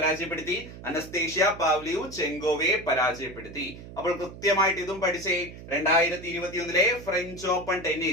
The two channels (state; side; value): noise; right; hum, 14 dB below the sound